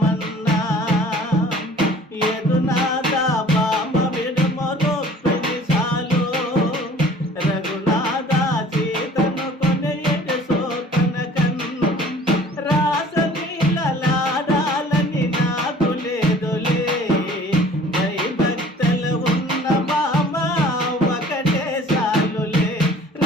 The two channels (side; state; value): both; normal; correlation 0.50